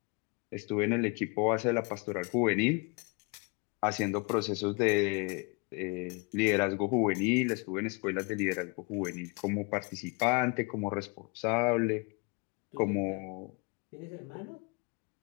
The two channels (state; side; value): quieter; right; 30.8 dB